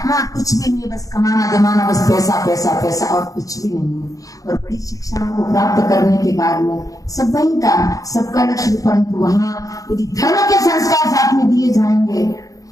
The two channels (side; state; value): right; late; 0.17 ms